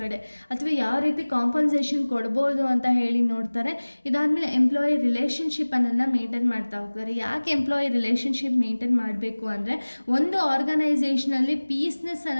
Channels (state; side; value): inverted; both; correlation -1.00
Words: ಅಥವಾ ಯಾವ ರೀತಿ ಕಾಂಪನ್ಸೇಷನ್ ಕೊಡ್ಬೋದು ಅಂತ ಹೇಳಿ ನೋಡ್ತಾರೆ. ಇದಾದಮೇಲೆ ಎಂಪ್ಲಾಯಿ ರಿಲೇಷನ್ಶಿಪ್ ಅನ್ನೋದನ್ನ ಮೇಂಟೈನ್ ಮಾಡ್ತಾ ಹೋಗ್ತಾರೆ. ಯಾಕೆ ಎಂಪ್ಲಾಯಿ ರಿಲೇಷನ್ಶಿಪ್ ಮೇಂಟೈನ್ ಮಾಡಬೇಕು ಅಂದರೆ, ಒಂದು ಆರ್ಗನೈಸೇಷನಲ್ಲಿ ಪೀಸ್ನೆಸ್